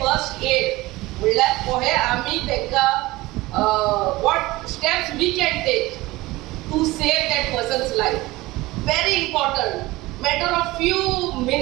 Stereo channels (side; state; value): left; quieter; 19.7 dB